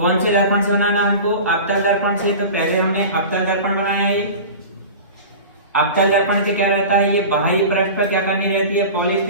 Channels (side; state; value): both; inverted; correlation -0.34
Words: से दर्पण से बनाना हमको? अवतल दर्पण से। तो पहले हमने अवतल दर्पण बनाया है। अवतल दर्पण से क्या रहता है, ये बाहरी पृष्ठ पर क्या करनी रहती है, पॉलिश।